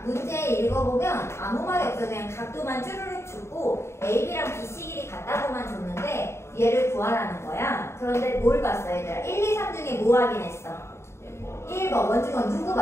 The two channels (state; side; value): late; right; 0.13 ms